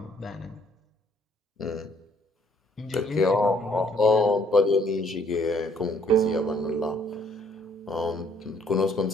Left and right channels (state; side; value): normal; both; correlation 0.63